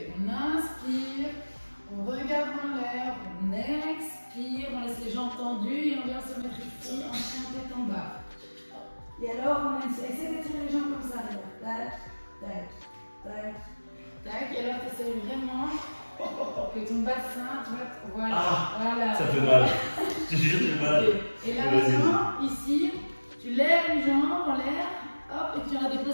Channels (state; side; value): inverted; both; correlation -1.00